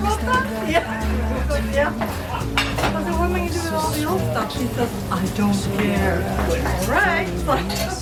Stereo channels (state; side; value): identical; both; correlation 1.00